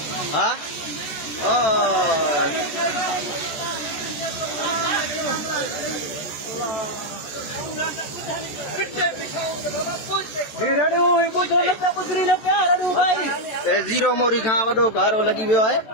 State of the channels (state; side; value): late; right; 14 ms